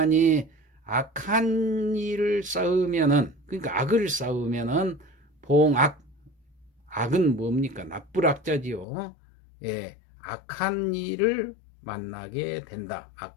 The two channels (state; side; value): drops out; right; at 8.8 s